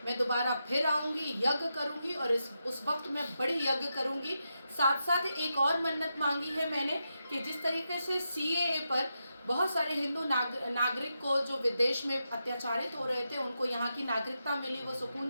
मैं दोबारा फिर आऊँगी, यज्ञ करूँगी और उस वक्त मैं बड़ी यज्ञ करूँगी। साथ साथ एक और मन्नत मांगी है मैंने कि जिस तरीके से CAA पर बहुत सारे हिंदू नागरिक को जो विदेश में अत्याचारित हो रहे थे, उनको यहाँ की नागरिकता मिली, वो सुकून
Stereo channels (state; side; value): inverted; both; correlation -0.86